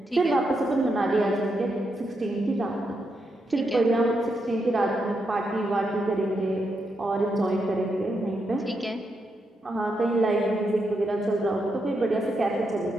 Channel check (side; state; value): both; normal; correlation 0.82